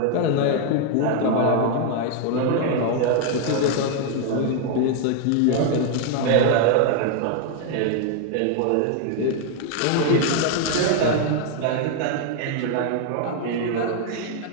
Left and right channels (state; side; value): different; both; correlation 0.00